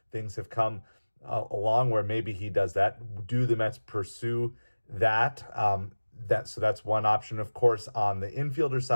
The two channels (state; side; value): inverted; both; correlation -1.00